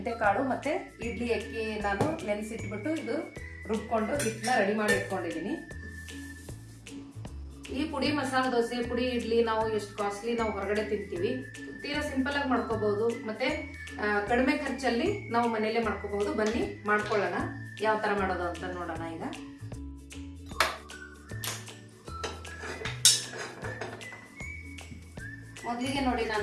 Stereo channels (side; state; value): both; identical; correlation 1.00